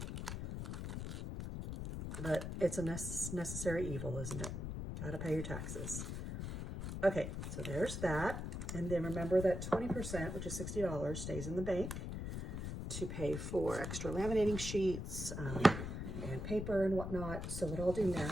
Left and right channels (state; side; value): noise; left; rumble, 5 dB below the sound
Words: but it's a necessary evil, isn't it? Gotta pay your taxes. Okay, so there's that. And then remember that 20%, which is $60, stays in the bank to pay for extra laminating sheets and paper and whatnot. So what I'll do